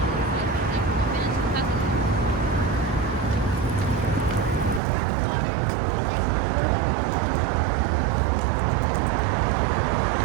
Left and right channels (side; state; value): left; drops out; at 4.8 s